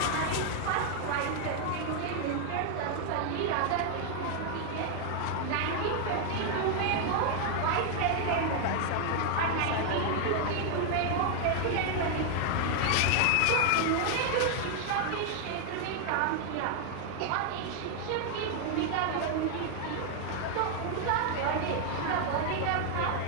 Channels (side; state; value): both; different; correlation 0.00